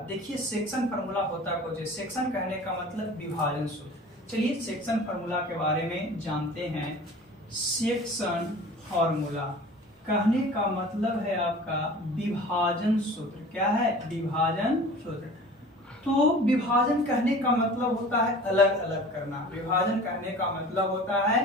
देखिए सेक्शन फार्मूला होता कुछ है, सेक्शन कहने का मतलब विभाजन सूत्र। चलिए सेक्शन फार्मूला के बारे में जानते हैं। सेक्शन फार्मूला कहने का मतलब है आपका विभाजन सूत्र। क्या है? विभाजन सूत्र। तो विभाजन कहने का मतलब होता है अलग अलग करना। विभाजन कहने का मतलब होता है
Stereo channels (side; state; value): both; normal; correlation 0.42